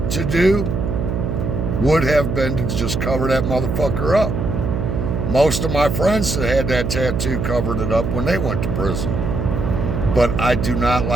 to do would have been to just cover that motherfucker up. Most of my friends that had that tattoo covered it up when they went to prison. But I do not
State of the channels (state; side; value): noise; right; hum, 1 dB below the sound